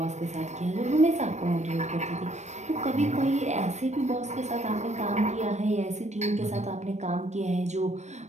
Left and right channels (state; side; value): late; left; 0.34 ms